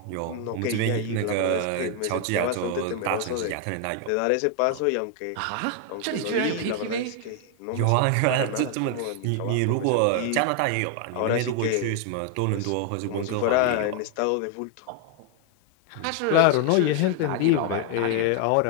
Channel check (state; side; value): different; both; correlation 0.00